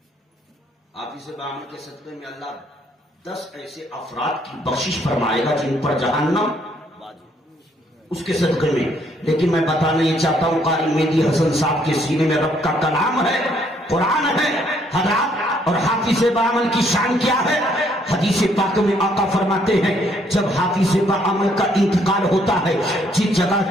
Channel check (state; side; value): normal; both; correlation 0.68